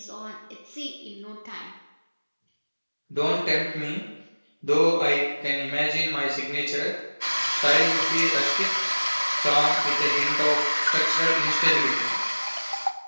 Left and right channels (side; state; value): both; inverted; correlation -1.00